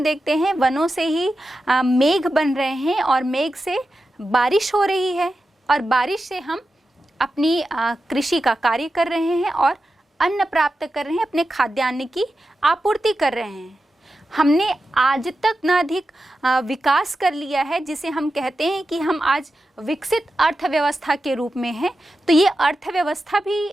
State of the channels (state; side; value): normal; both; correlation 0.91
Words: देखते हैं वनों से ही मेघ बन रहे हैं और मेघ से बारिश हो रही है और बारिश से हम अपनी कृषि का कार्य कर रहे हैं और अन्न प्राप्त कर रहे हैं, अपने खाद्यान्न की आपूर्ति कर रहे हैं। हमने आज तक न अधिक विकास कर लिया है जिसे हम कहते हैं कि हम आज विकसित अर्थव्यवस्था के रूप में हैं। तो ये अर्थव्यवस्था भी,